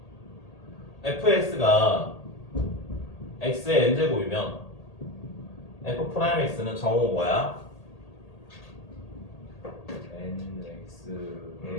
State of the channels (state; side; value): late; right; 1.8 ms